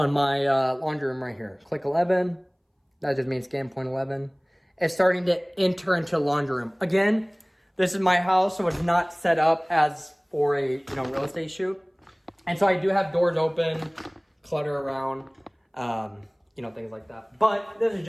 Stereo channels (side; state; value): both; identical; correlation 1.00